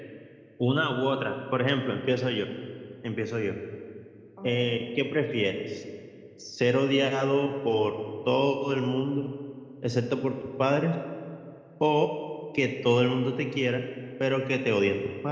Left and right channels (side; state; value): both; identical; correlation 1.00